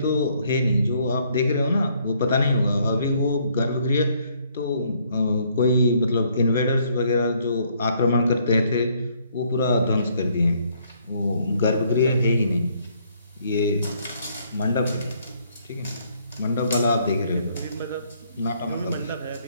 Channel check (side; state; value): both; inverted; correlation -0.67